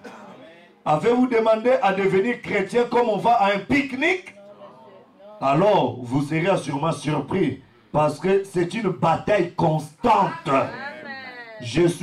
Avez-vous demandé à devenir chrétien comme on va à un pique-nique? Alors vous serez sûrement surpris. Parce que c'est une bataille constante. Je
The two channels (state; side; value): identical; both; correlation 1.00